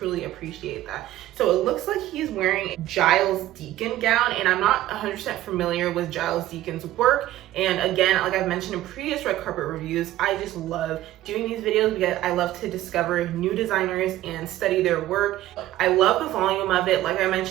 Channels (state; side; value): quieter; left; 14.7 dB